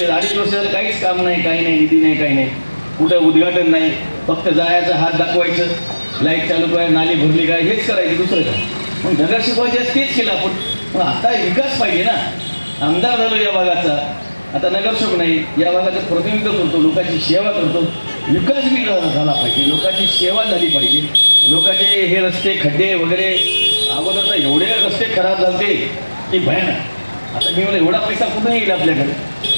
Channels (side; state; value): both; inverted; correlation -1.00